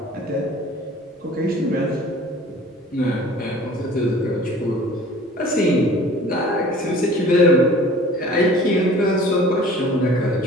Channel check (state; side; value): normal; both; correlation 0.47